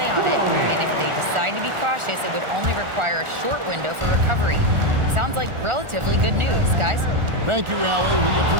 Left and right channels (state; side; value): late; left; 1.4 ms